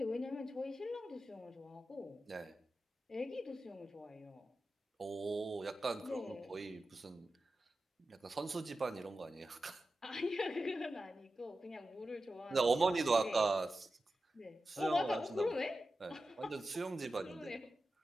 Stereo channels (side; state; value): both; normal; correlation 0.92